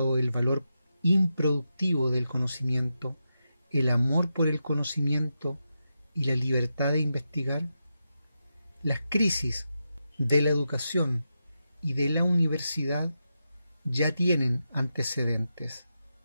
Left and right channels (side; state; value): both; inverted; correlation -0.88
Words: el valor improductivo del conocimiento, el amor por el conocimiento y la libertad de investigar? Las crisis de la educación y de la universidad ya tienen antecedentes.